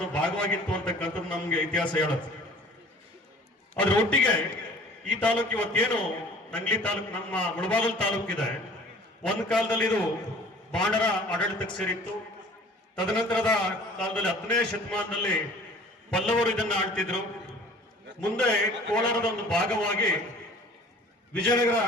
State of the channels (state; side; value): normal; both; correlation 0.49